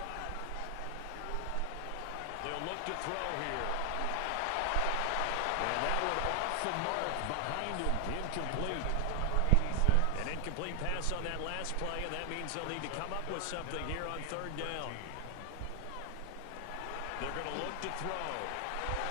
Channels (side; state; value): both; different; correlation 0.00